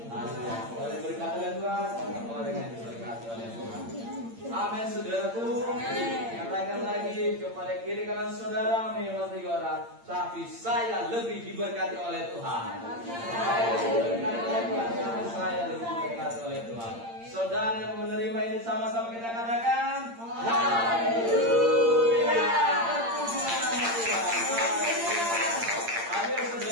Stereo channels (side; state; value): left; late; 8.7 ms